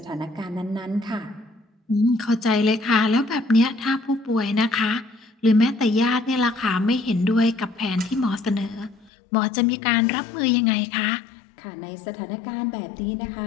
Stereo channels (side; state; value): right; drops out; at 9.1 s